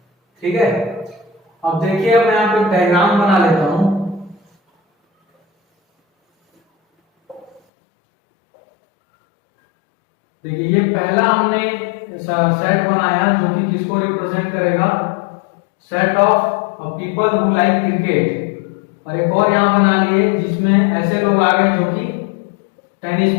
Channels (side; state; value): right; drops out; at 7.6 s